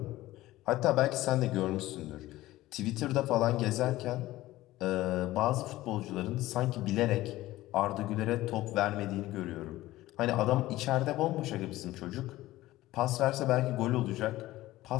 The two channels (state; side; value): quieter; right; 16.6 dB